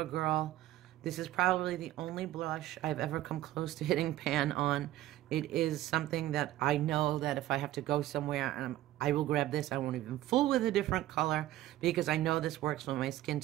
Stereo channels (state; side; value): quieter; left; 14.7 dB